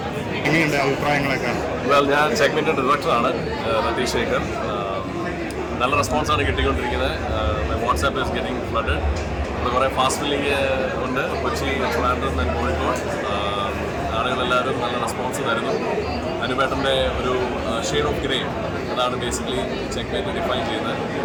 എങ്ങനെയുണ്ട് അഭിപ്രായങ്ങളൊക്കെ? ഞാൻ ചെക്ക്മെന്റ് ഡയറക്ടറാണ് രതീഷ് ശേഖർ. നല്ല റെസ്പോൺസാണ് കിട്ടിക്കൊണ്ടിരിക്കുന്നത്. WhatsApp is getting flooded. ഇവിടെ കുറേ ഫാസ്റ്റ് ഫില്ലിങ് ഉണ്ട്. കൊച്ചി, ട്രിവാൻഡ്രം ആൻഡ് കോഴിക്കോട്. ആളുകളെല്ലാവരും നല്ല റെസ്പോൺസ് തരുന്നു. അനുപേട്ടൻ്റെ ഒരു ഷെയ്ഡ് ഓഫ് ഗ്രേ, അതാണ് ബേസിക്കലി ചെക്ക്മെന്റ് ഡിഫൈൻ ചെയ്യുന്നത്.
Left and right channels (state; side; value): identical; both; correlation 1.00